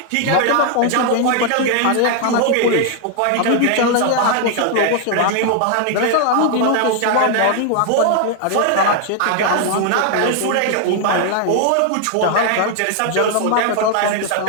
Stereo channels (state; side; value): different; both; correlation 0.00